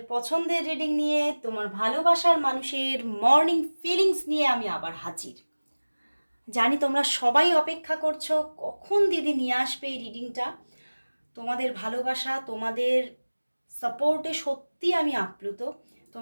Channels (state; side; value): inverted; both; correlation -1.00